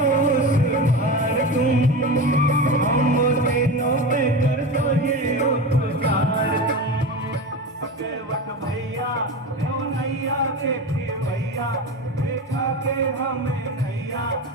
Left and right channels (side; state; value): both; normal; correlation 0.25